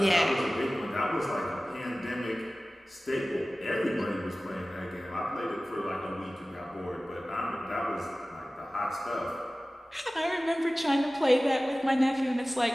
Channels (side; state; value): both; normal; correlation 0.97